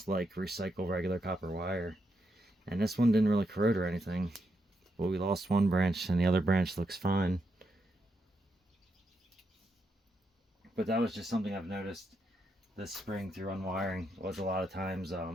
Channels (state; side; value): normal; both; correlation 0.82